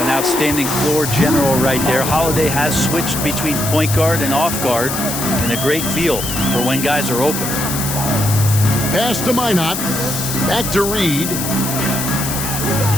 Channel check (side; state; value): left; noise; hiss, 4 dB below the sound